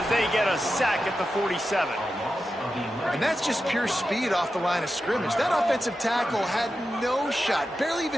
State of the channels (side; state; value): both; normal; correlation 0.91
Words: they get a sack at the 47. And that's just pure speed off the line of scrimmage. That offensive tackle had no shot. Barely